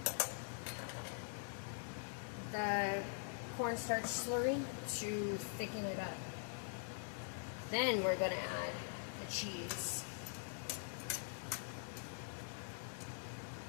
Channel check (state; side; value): silent; right; digital silence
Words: the cornstarch slurry to thicken it up. Then we're going to add the cheese.